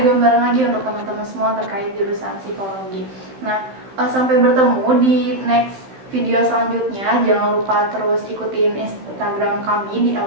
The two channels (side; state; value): left; late; 16 ms